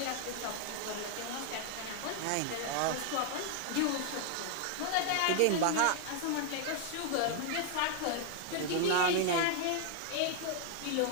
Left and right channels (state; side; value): different; both; correlation 0.00